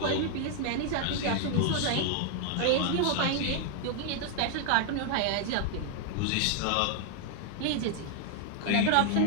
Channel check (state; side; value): different; both; correlation 0.00